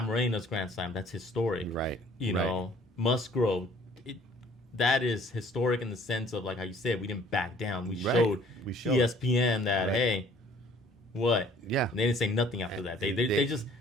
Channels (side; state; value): both; normal; correlation 0.55